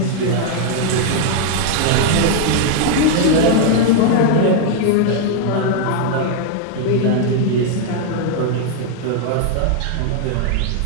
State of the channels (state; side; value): different; both; correlation 0.00